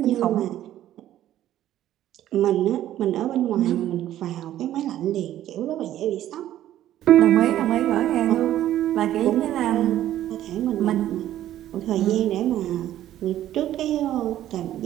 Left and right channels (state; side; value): quieter; left; 12.7 dB